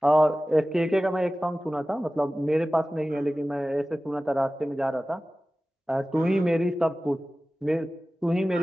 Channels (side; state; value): both; normal; correlation 0.96